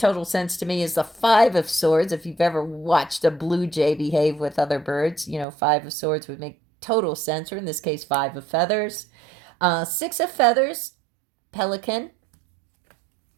sense to me, is the Five of Swords. If you've ever watched a blue jay behave with other birds, Five of Swords would make total sense, or in this case, Five of Feathers. Six of Feathers, pelican.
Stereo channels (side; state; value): left; drops out; at 5.5 s